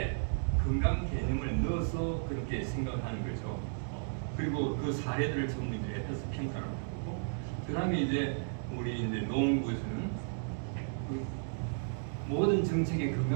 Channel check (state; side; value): silent; left; digital silence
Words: 건강 개념을 넣어서 그렇게 생각하는 거죠. 그리고 그 사례들을 전부 이제 해서 평가를 하고 그 다음에 이제 우리 이제 노원구에서는 그 모든 정책의